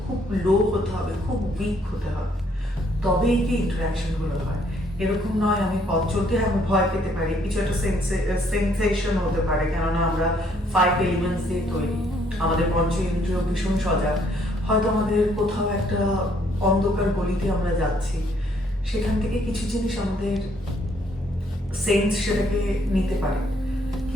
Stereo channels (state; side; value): normal; both; correlation 0.67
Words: খুব লো হতে হবে, খুব উইক হতে হবে, তবেই কি ইন্টারাকশনগুলো হয়। এরকম নয় আমি পথ চলতে আমি ভয় পেতে পারি, কিছু একটা সেন্সেশন হতে পারে, কেননা আমরা 5 এলিমেন্টস দিয়ে তৈরি, আমাদের পঞ্চ ইন্দ্রিয় ভীষণ সজাগ। হয়তো আমাদের কোথাও একটা অন্ধকার গলিতে আমরা যাচ্ছি, সেখান থেকে কিছু জিনিস আমাদের সেন্স সেটাকে নিতে পারে,